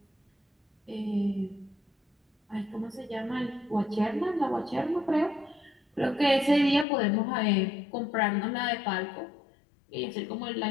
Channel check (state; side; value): drops out; right; at 6.9 s